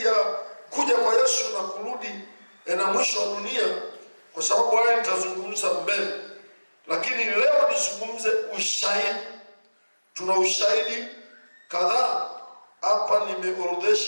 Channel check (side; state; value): both; inverted; correlation -1.00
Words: ya kuja kwa Yesu na kurudi na mwisho wa dunia, kwa sababu haya nitazungumza mbele. Lakini leo nizungumze ushahidi. Tuna ushahidi kadhaa hapa,